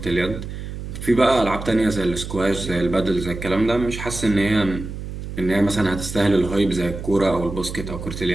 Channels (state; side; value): noise; right; hum, 8 dB below the sound